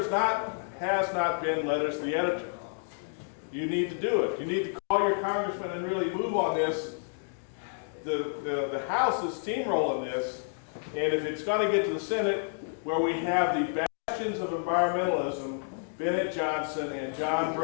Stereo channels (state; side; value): silent; right; digital silence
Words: not been letters to the editor. You need to do it. You need to call your congressman and really move on this. The House is steamrolling this, and if it's going to get to the Senate, where we have the bastions of environmentalism, Bennett Johnson and John